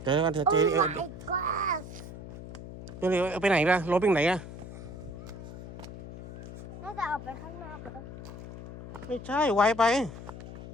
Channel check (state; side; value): noise; left; hum, 12 dB below the sound